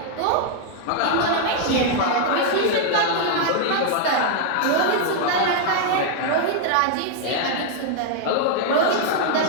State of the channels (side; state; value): both; different; correlation 0.00